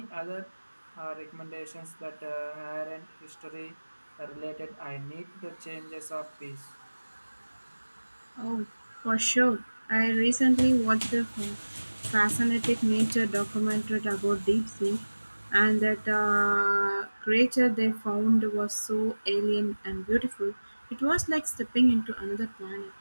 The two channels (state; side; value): inverted; both; correlation -1.00